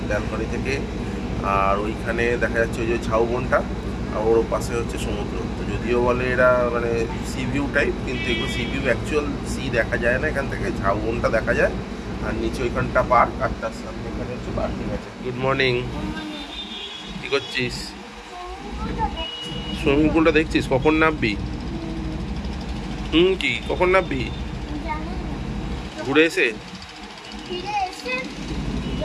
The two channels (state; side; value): identical; both; correlation 1.00